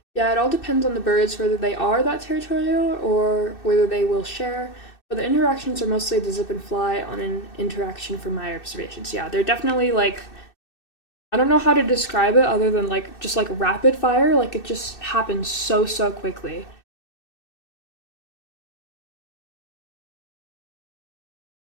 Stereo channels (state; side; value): late; right; 2.6 ms